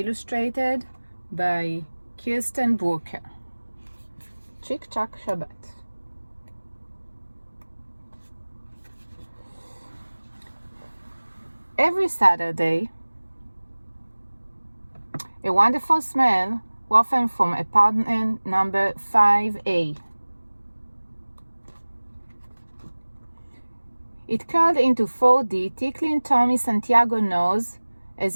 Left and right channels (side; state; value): both; inverted; correlation -1.00